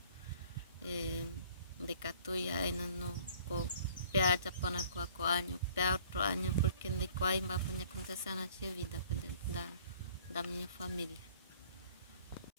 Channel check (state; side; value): inverted; both; correlation -0.54